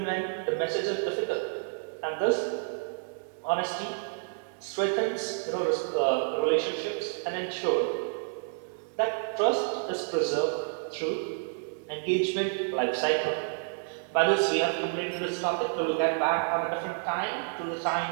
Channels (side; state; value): left; silent; digital silence